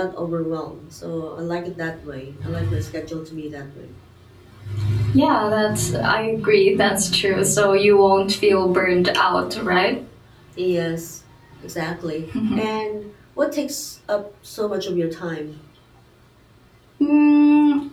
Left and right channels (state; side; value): identical; both; correlation 1.00